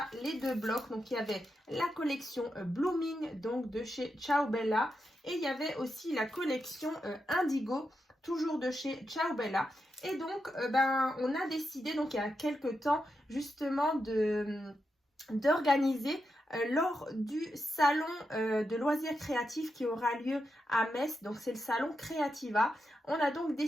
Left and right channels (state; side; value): normal; both; correlation 0.86